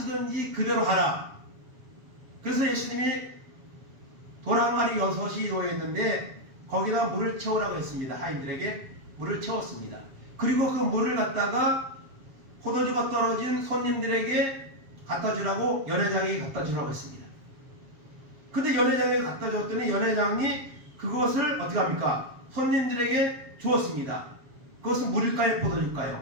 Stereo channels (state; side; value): late; left; 7.2 ms